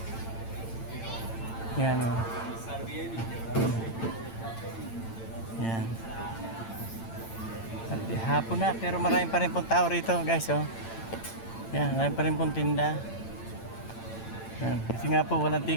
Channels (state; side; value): late; right; 8.9 ms